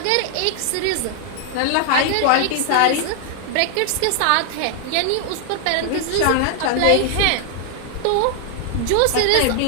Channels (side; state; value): both; different; correlation 0.00